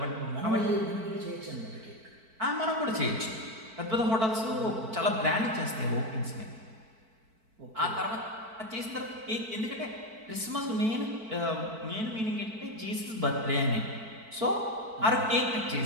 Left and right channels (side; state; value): left; late; 4.5 ms